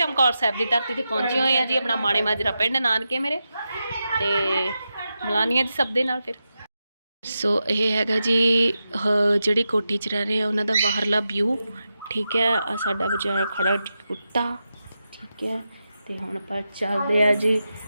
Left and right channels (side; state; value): both; inverted; correlation -0.89